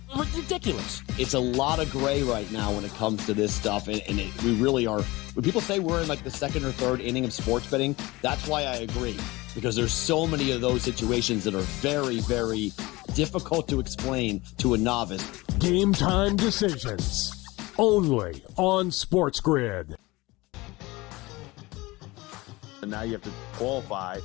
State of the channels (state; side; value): quieter; right; 21.5 dB